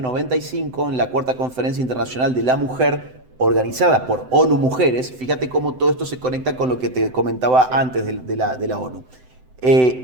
en la Cuarta Conferencia Internacional de la Mujer, organizada por ONU Mujeres, fíjate cómo todo esto se conecta con lo que te comentaba antes de la ONU,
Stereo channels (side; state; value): left; late; 7.9 ms